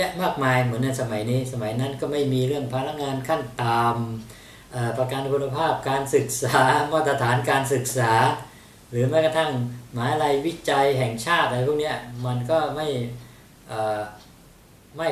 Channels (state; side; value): identical; both; correlation 1.00